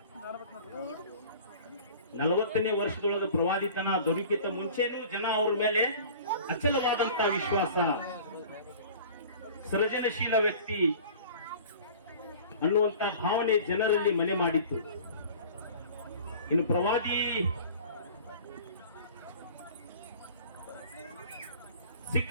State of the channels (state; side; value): inverted; both; correlation -0.44